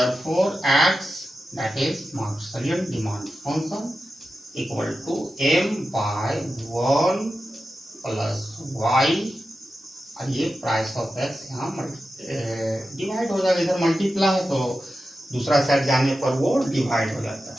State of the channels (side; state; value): both; normal; correlation 0.92